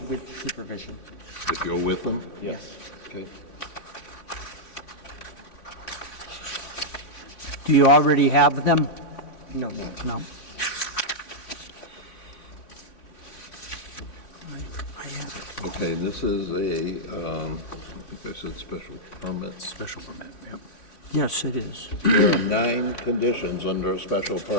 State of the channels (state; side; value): late; right; 3.5 ms